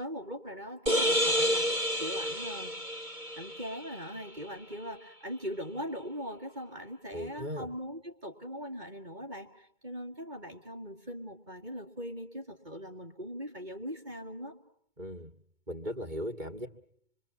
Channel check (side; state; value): left; late; 2.2 ms